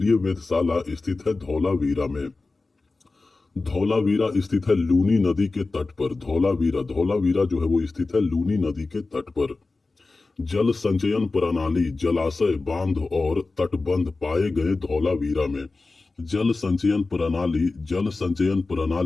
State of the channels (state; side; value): quieter; right; 3.6 dB